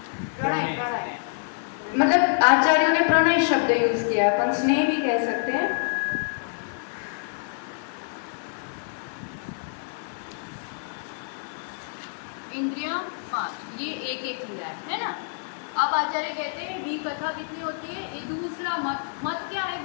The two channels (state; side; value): silent; right; 60 dB below the other